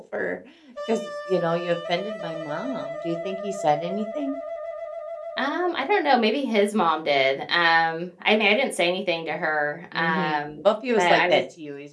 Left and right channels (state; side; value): identical; both; correlation 1.00